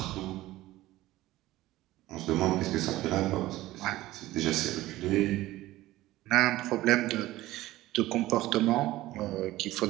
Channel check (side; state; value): left; quieter; 16.7 dB